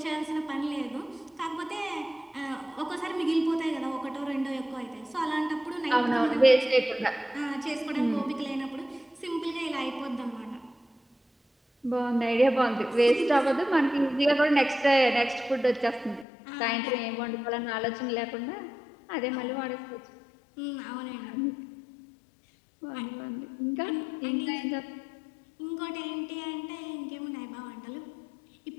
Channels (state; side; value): drops out; right; at 16.2 s